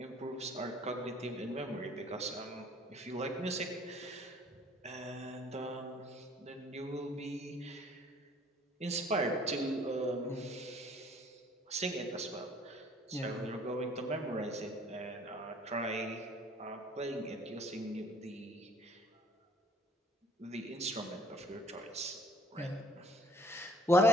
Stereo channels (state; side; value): normal; both; correlation 0.57